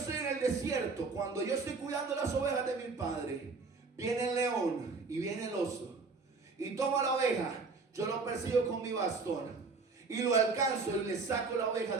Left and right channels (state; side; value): quieter; left; 4.3 dB